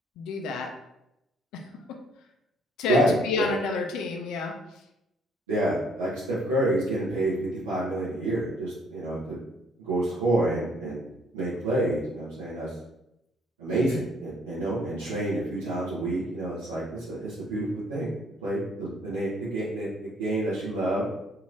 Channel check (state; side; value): normal; both; correlation 0.63